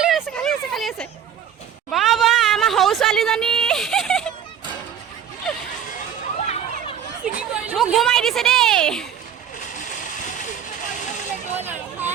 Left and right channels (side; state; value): left; quieter; 9.0 dB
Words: আছে বাবা আমাৰ সৰু ছোৱালীজনী মোক ঘুমাই দিছে দেই